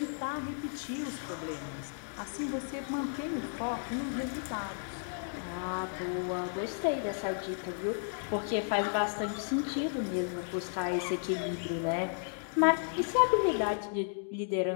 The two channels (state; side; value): silent; right; digital silence